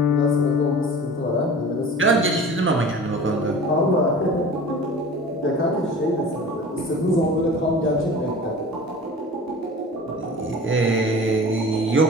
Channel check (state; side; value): normal; both; correlation 0.39